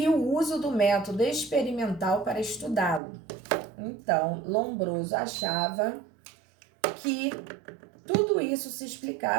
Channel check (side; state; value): left; drops out; at 3.0 s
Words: o uso do método experimental para estudá-lo. Então, Lombroso achava que tudo isso se